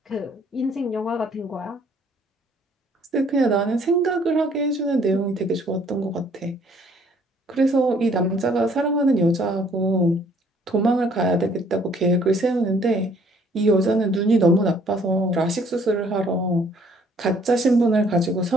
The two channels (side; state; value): both; normal; correlation 0.61